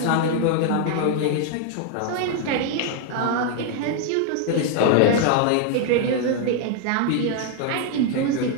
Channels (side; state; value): both; different; correlation 0.00